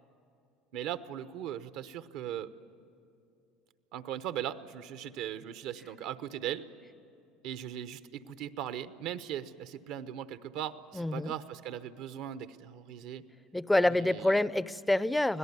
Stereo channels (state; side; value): normal; both; correlation 0.81